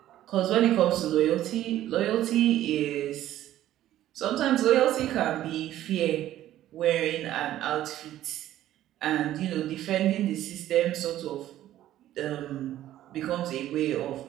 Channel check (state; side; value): quieter; left; 13.2 dB